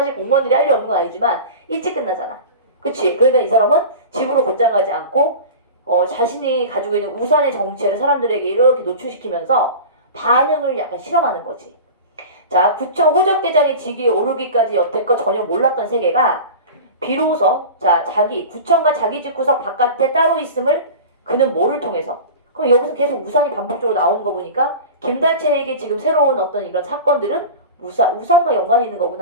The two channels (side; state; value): both; inverted; correlation -0.33